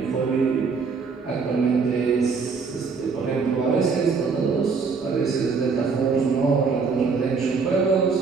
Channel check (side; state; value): left; quieter; 5.1 dB